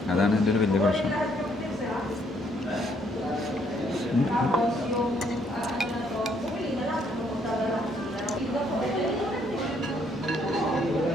അതാണ് എൻ്റെ ഒരു വലിയ പ്രശ്നം.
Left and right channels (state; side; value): normal; both; correlation 0.69